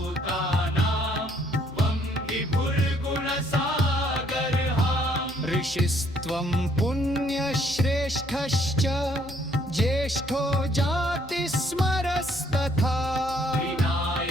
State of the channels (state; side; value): normal; both; correlation 0.66